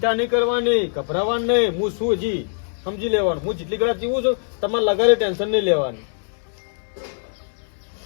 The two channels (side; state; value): right; silent; digital silence